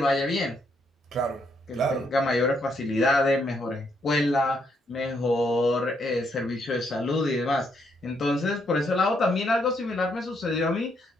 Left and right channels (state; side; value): normal; both; correlation 0.75